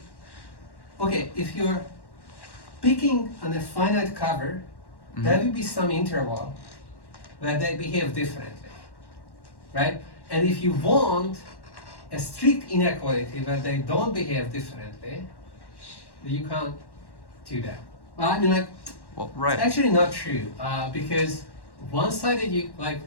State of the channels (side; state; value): right; late; 1.1 ms